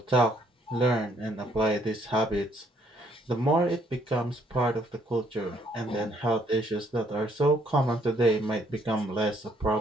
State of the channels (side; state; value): both; normal; correlation 0.68